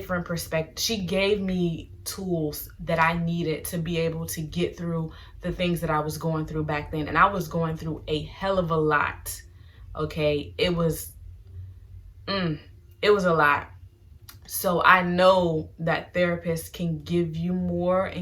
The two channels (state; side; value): identical; both; correlation 1.00